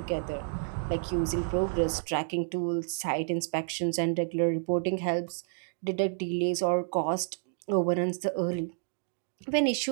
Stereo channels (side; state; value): left; silent; digital silence